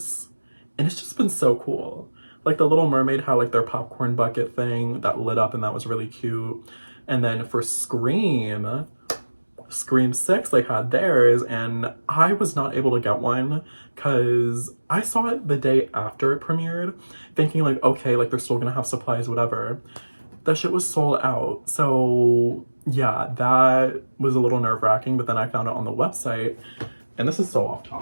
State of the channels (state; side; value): inverted; both; correlation -1.00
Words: and it's just been so cool. Like, the Little Mermaid had like their popcorn bucket thing that lit up, and that was really cute. And then for Scream 6, they had theirs, and I was not able to get one because I saw it the day after it premiered, thinking like, okay, like they're still gonna have supplies, whatever. That shit was sold out. So yeah, that was a little nerve-wracking, but then I found it on the website, and this is so off